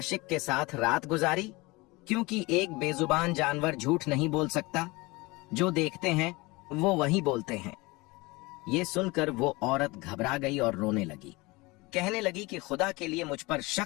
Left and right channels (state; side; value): quieter; right; 23.5 dB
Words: के साथ रात गुजारी? क्योंकि एक बेजुबान जानवर झूठ नहीं बोल सकता। जो देखते हैं वो वही बोलते हैं। ये सुनकर वो औरत घबरा गई और रोने लगी। कहने लगी कि खुदा के लिए मुझ पर